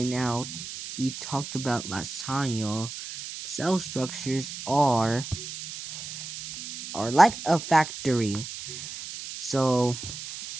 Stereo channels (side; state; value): right; noise; hiss, 9 dB below the sound